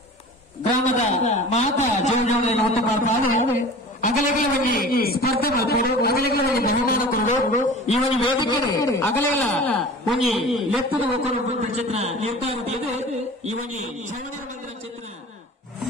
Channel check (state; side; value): normal; both; correlation 0.39